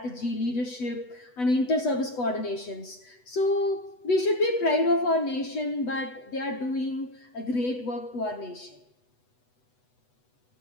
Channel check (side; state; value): right; late; 8.1 ms